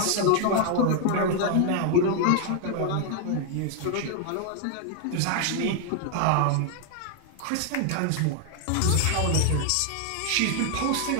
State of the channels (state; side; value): different; both; correlation 0.00